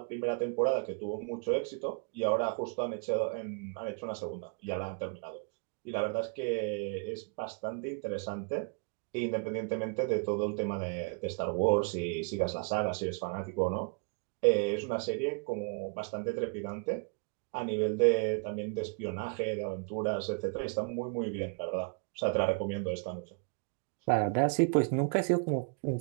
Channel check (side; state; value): left; quieter; 37.2 dB